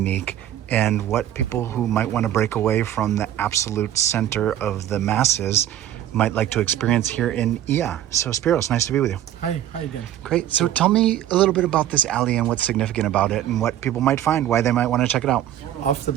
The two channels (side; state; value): left; quieter; 11.9 dB